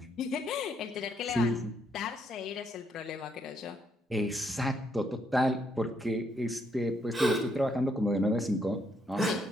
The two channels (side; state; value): both; normal; correlation 0.73